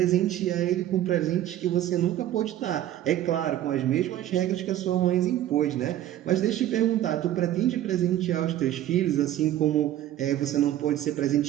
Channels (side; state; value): left; quieter; 12.7 dB